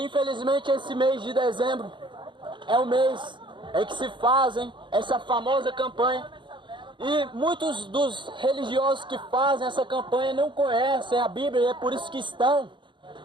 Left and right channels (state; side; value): late; left; 0.23 ms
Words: esse mês de dezembro é o mês em que se fazem essa famosa campanha. E muitos dos religiosos que fazem essa campanha não conhecem a Bíblia, e é por isso que estão